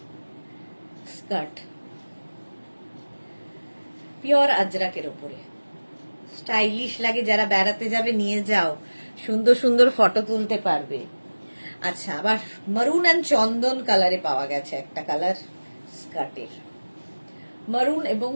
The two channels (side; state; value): both; inverted; correlation -1.00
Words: স্কার্ট, পিওর আজরাকের উপরে, স্টাইলিশ লাগে, যারা বেড়াতে যাবে নিয়ে যাও, সুন্দর সুন্দর ফটো তুলতে পারবে। আচ্ছা, আবার মারুন অ্যান্ড চন্দন কালারে পাওয়া গেছে একটা কালার স্কার্টের, মারুন এবং